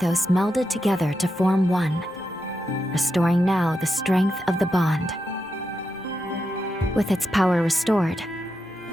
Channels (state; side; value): normal; both; correlation 0.86